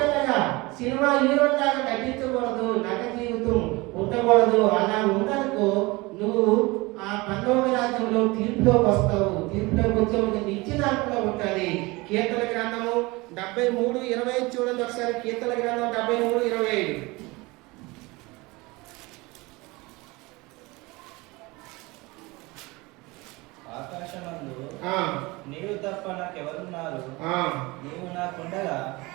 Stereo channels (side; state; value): left; quieter; 23.4 dB